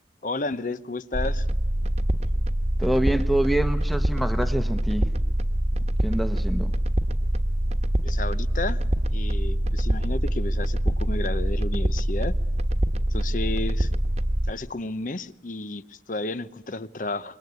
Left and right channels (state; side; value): normal; both; correlation 0.91